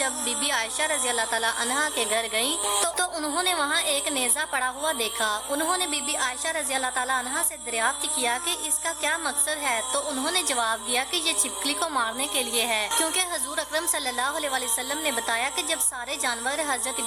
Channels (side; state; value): left; noise; hum, 25 dB below the sound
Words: बीबी आयशा रज़ी अल्लाह ताला अन्हा के घर गई तो उन्होंने वहाँ एक नेज़ा पड़ा हुआ देखा। उन्होंने बीबी आयशा रज़ी अल्लाह ताला अन्हा से दरियाफ्त किया कि इसका क्या मकसद है, तो उन्होंने जवाब दिया कि ये छिपकली को मारने के लिए है, क्योंकि हजूर अकरम सल्लल्लाहु अलैहि वसल्लम ने बताया कि जब सारे जानवर हजरत